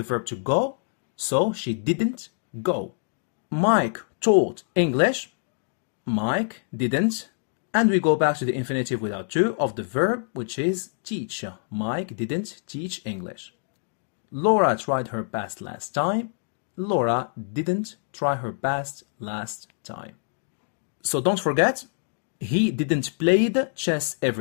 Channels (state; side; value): silent; right; digital silence